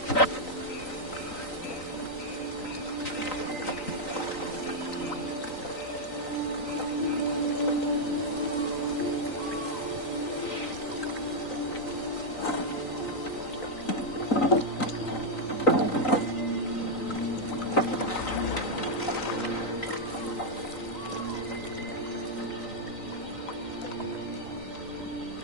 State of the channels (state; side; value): late; right; 3.9 ms